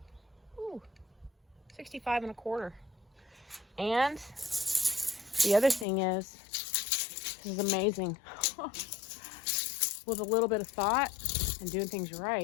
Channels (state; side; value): drops out; right; at 5.9 s